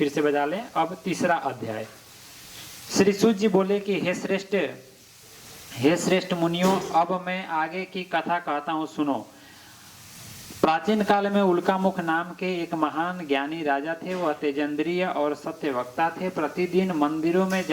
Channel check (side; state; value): both; identical; correlation 1.00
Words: से बजा लें। अब तीसरा अध्याय। श्री सूत जी बोले कि हे श्रेष्ठ मुनियों, अब मैं आगे की कथा कहता हूँ, सुनो। प्राचीन काल में उल्कामुख नाम के एक महान ज्ञानी राजा थे। वह तेजेंद्रिय और सत्यवक्ता थे। प्रतिदिन मंदिरों में